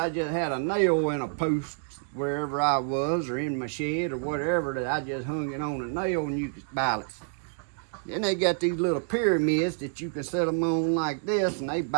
just had a nail in a post wherever I was, or in my shed or whatever, that I just hung it on a nail and you could balance it. Then they got these little pyramids that you can set them on like this, and they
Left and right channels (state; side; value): silent; left; digital silence